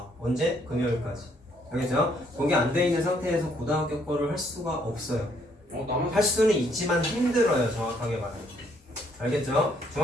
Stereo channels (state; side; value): normal; both; correlation 0.69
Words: 언제? 금요일까지. 알겠죠? 그게 안 돼 있는 상태에서 고등학교 거를 할 수가 없어요. 할 수는 있지만 힘들어요. 정확하게 말하면. 알겠죠?